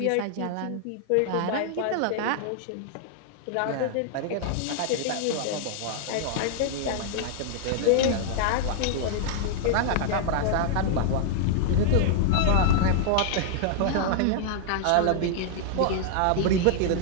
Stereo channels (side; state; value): both; different; correlation -0.01